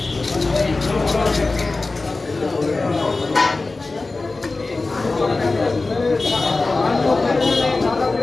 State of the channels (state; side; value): quieter; right; 3.5 dB